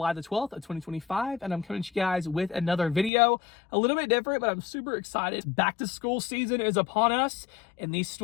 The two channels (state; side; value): drops out; right; at 3.1 s